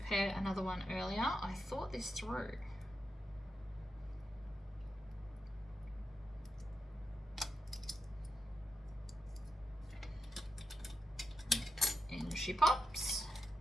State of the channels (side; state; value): both; normal; correlation 0.86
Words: another one earlier. I thought this through. In she pops.